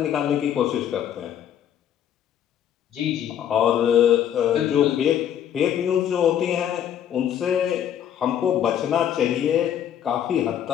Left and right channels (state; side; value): quieter; right; 9.8 dB